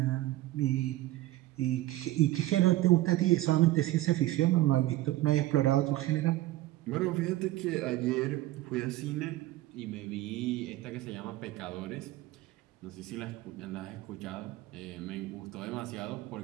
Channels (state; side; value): quieter; left; 16.3 dB